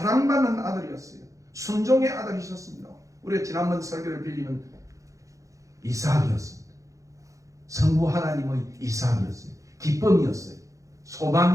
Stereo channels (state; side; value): late; left; 0.16 ms